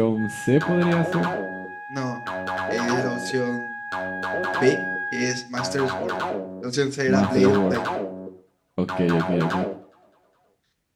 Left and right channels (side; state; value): both; identical; correlation 1.00